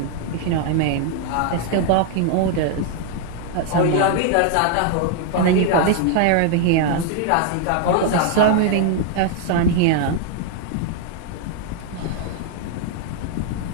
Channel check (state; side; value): different; both; correlation 0.00